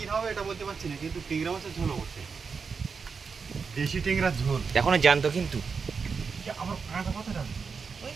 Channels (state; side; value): quieter; left; 5.4 dB